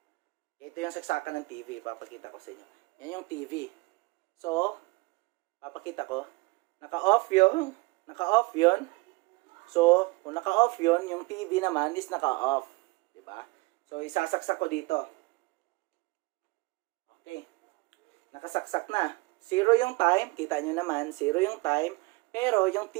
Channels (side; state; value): left; quieter; 25.1 dB